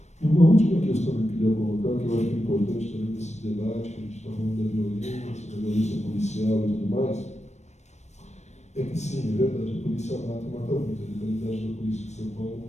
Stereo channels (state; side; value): late; right; 0.33 ms